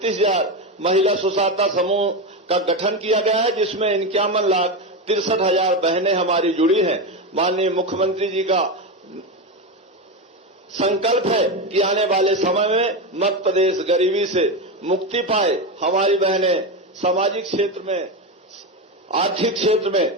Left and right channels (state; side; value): normal; both; correlation 0.15